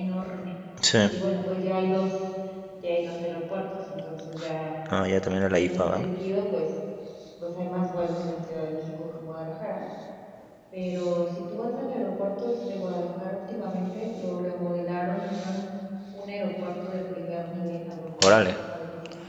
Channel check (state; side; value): identical; both; correlation 1.00